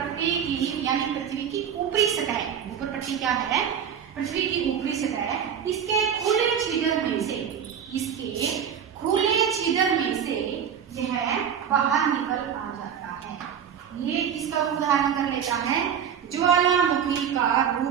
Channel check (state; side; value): quieter; left; 8.2 dB